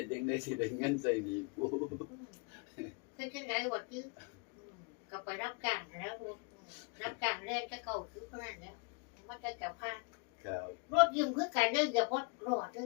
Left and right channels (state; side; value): quieter; right; 34.8 dB